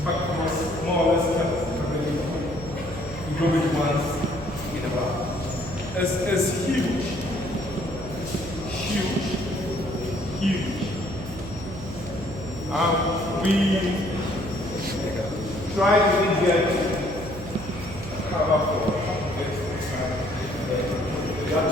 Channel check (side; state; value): right; noise; hum, 11 dB below the sound